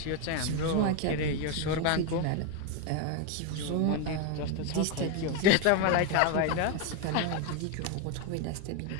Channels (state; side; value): different; both; correlation 0.02